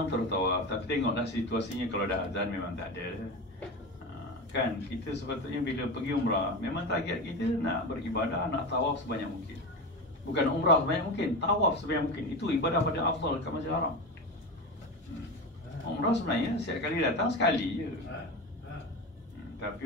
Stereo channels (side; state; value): both; normal; correlation 0.22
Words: tertawaf. Tapi tengoklah situasinya, kalau dah azan memang tak ada. Kan kita sepatutnya bila pergi umrah, memang target kita nak beribadah, nak tawaf sebanyak mungkin. Bukan umrah sebanyak mungkin, tawaf sebanyak mungkin. Itu ibadah pada afdal kat Masjidil Haram. Umrah sebenarnya setiap kali datang sekali je. Tapi